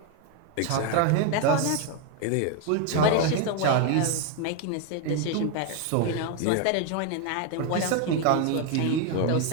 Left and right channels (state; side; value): different; both; correlation 0.02